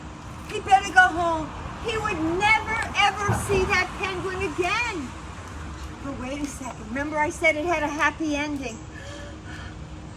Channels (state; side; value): identical; both; correlation 1.00